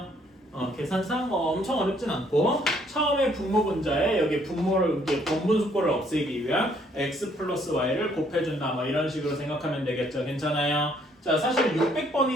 계산상 엄청 어렵진 않고 처음에 분모 분자에 여기 분모를 번분수꼴을 없애기 위한 x 플러스 y를 곱해준다 뭐 이런 식으로 생각하면 되겠죠. 괜찮아요? 자, 사실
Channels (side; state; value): both; normal; correlation 0.65